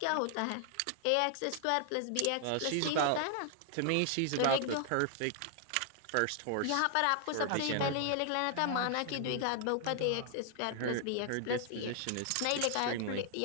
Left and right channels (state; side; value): different; both; correlation 0.00